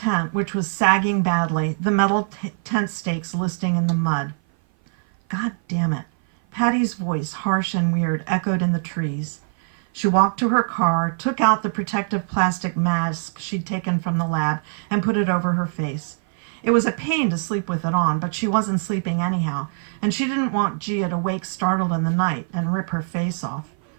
which was sagging badly, the metal tent stakes listing in the mud. God damn it. Patty's voice, harsh and weird, echoed in the trees. She walked to her car, took out the protective plastic mask she'd taken from the lab, and put it over her face. It was a pain to sleep with it on, but she wasn't sleeping anyhow, and she didn't want Gia to wake startled in the night and rip her face off.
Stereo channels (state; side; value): silent; left; 56 dB below the other